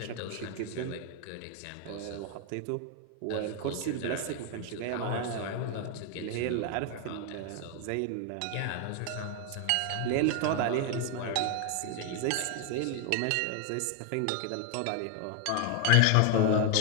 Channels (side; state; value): both; different; correlation 0.01